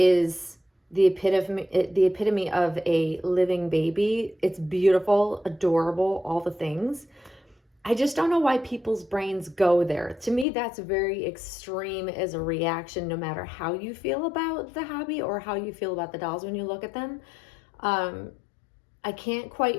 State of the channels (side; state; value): right; drops out; at 10.5 s